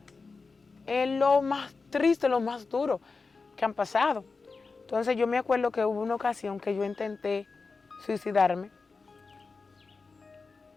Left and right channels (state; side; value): quieter; right; 4.3 dB